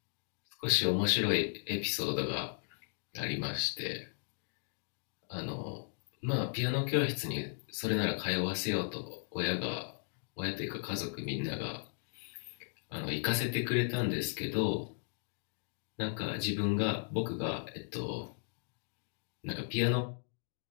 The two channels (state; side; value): silent; right; digital silence